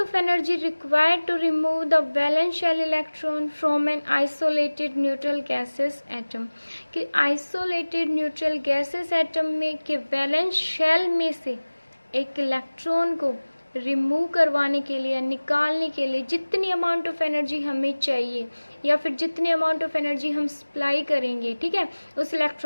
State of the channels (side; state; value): both; inverted; correlation -1.00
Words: energy required to remove the valence shell electron from an isolated neutral gaseous atom. कि isolated neutral gaseous atom में के valence shell में से एक electron को remove करवाने के लिए, निकालने के लिए जितनी अमाउंट ऑफ एनर्जी हमें चाहिए या फिर जितनी अमाउंट ऑफ एनर्जी हम सप्लाई करेंगे, ठीक है, उस